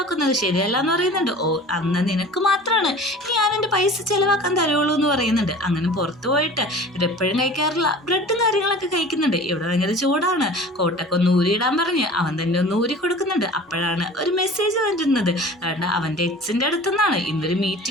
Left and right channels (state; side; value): normal; both; correlation 0.41